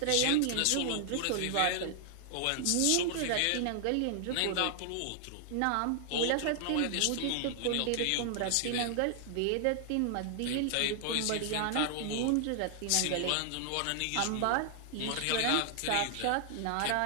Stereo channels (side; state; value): both; different; correlation 0.00